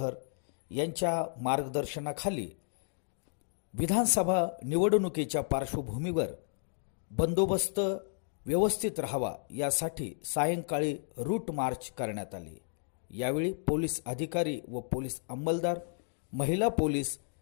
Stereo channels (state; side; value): silent; right; digital silence